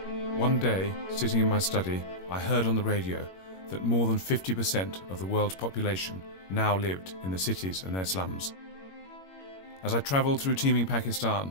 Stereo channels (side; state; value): right; late; 21 ms